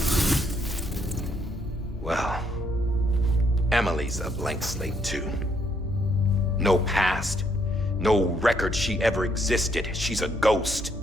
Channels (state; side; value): normal; both; correlation 0.72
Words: Well, Emily's a blank slate too. No past, no record she ever existed. She's a ghost.